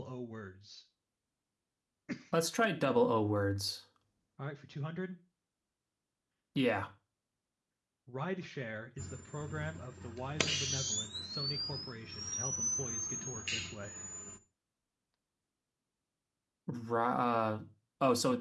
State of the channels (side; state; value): both; identical; correlation 1.00